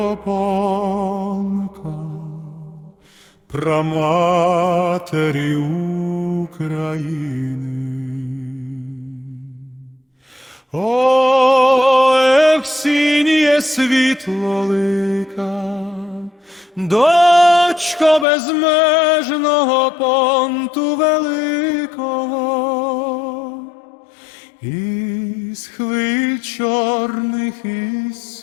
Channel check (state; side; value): drops out; right; at 18.2 s